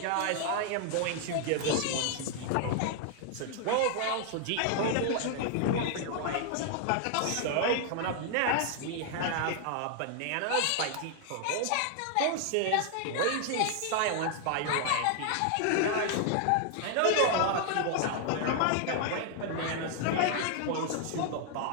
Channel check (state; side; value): different; both; correlation 0.00